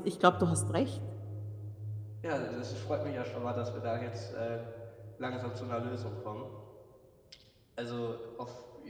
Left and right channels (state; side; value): identical; both; correlation 1.00